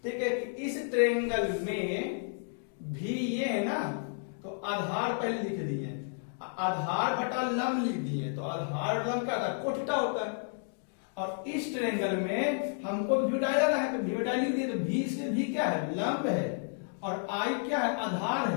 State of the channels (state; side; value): silent; right; digital silence